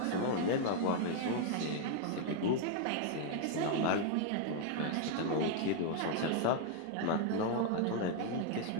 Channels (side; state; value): both; different; correlation 0.00